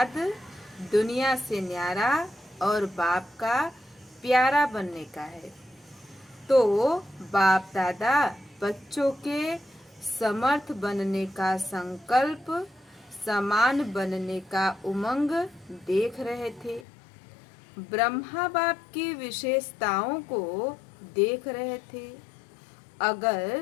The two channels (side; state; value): right; drops out; at 16.9 s